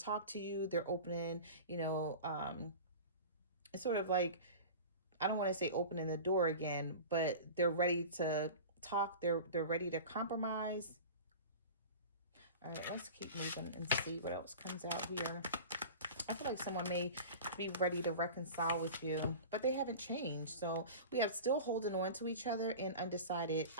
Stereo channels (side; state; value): both; inverted; correlation -0.34